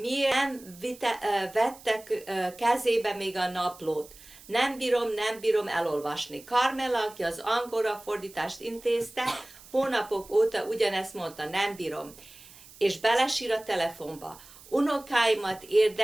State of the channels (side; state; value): right; noise; hiss, 21 dB below the sound